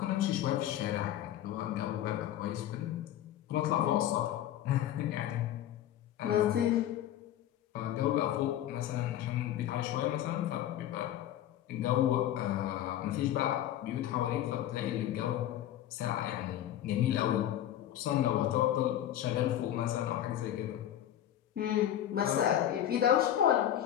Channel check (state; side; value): quieter; right; 11.8 dB